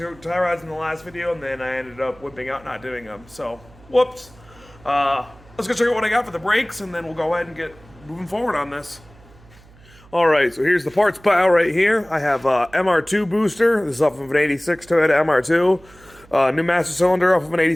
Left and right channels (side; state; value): right; noise; hum, 25 dB below the sound